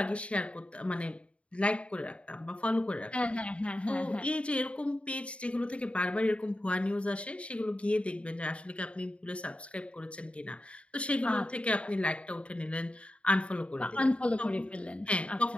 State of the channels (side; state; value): right; late; 0.061 ms